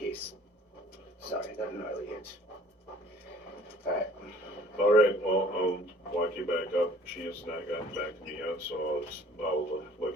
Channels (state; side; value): normal; both; correlation 0.53